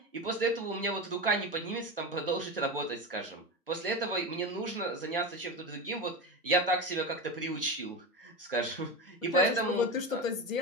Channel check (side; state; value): both; normal; correlation 0.20